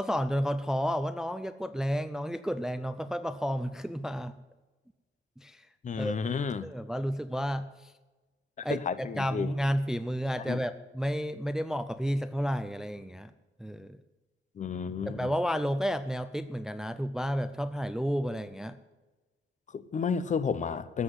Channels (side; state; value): both; normal; correlation 0.86